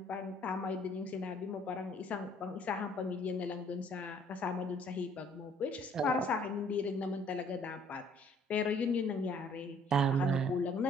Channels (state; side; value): normal; both; correlation 0.59